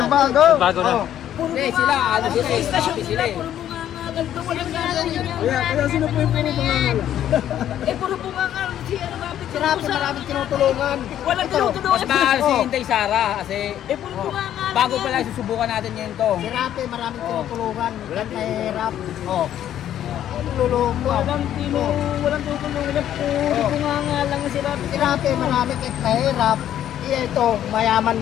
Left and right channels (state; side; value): quieter; right; 11.1 dB